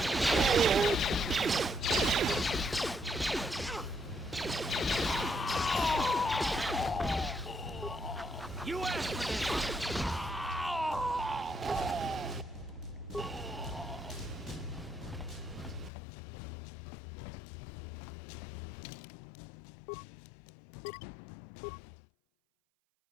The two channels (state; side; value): drops out; right; at 15.9 s